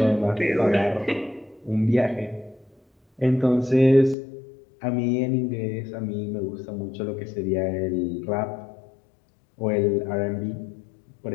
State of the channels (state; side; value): drops out; right; at 4.2 s